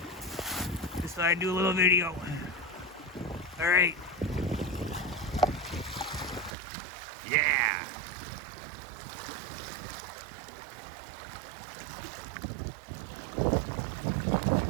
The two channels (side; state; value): left; drops out; at 6.5 s